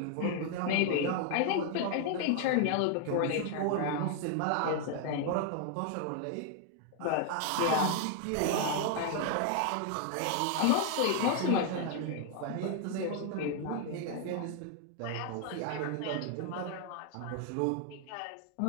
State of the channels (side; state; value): both; different; correlation 0.00